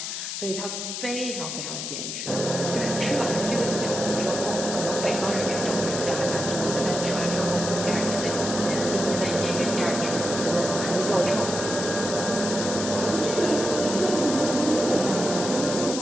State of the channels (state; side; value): noise; left; hiss, 5 dB below the sound